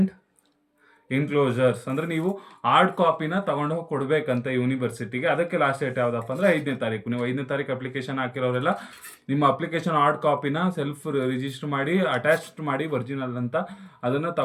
enclosures, ಅಂದರೆ ನೀವು ಹಾರ್ಡ್ ಕಾಪಿನ ತಗೊಂಡು ಹೋಗಿ ಕೊಡಬೇಕಂತ ಯೂನಿವರ್ಸಿಟಿಗೆ. ಅದಕ್ಕೆ ಲಾಸ್ಟ್ ಡೇಟ್ ಯಾವುದಪ್ಪ ಅಂದರೆ 5ನೇ ತಾರೀಕು. ನೀವು 5ನೇ ತಾರೀಕು ಅಪ್ಲಿಕೇಶನ್ ಹಾಕಿರೋರೆಲ್ಲ ನಿಮ್ಮ ಅಪ್ಲಿಕೇಶನ್ ಹಾರ್ಡ್ ಕಾಪಿನ ಸೆಲ್ಫ್ ರಿಜಿಸ್ಟರ್ ಮಾಡಿ ಅಟ್ಯಾಚ್ಡ್ ಮಾಡಿ ಒರಿಜಿನಲ್ ಅಂತ ಅದನ್ನು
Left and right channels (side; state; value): both; identical; correlation 1.00